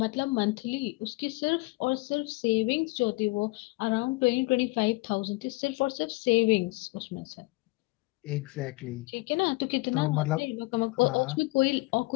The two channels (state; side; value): quieter; right; 23.8 dB